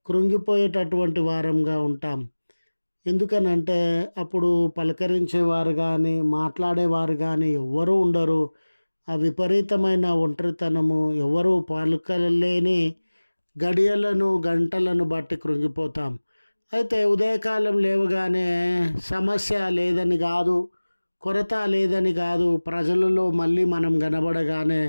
కృంగిపోయేటటువంటి వారంగా ఉంటాం. ఎందుకనంటే అప్పుడు పలకరించేవారు కానీ, మాట్లాడేవారు కానీ ఎవ్వరూ ఉండరు. ఆ విపరీతమైన ఒంటరితనము, ఎవరు పలుకలేని గడియలను, గంటలను బట్టి కృంగిపోతాం. అయితే ఉదయకాలం లేవగానే సమస్య లేదని కాదు, కొరత లేదని కాదు, ప్రజలలో మళ్ళీ మనం కనబడగానే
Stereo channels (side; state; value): both; inverted; correlation -1.00